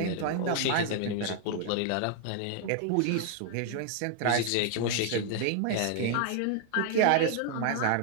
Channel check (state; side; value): different; both; correlation 0.00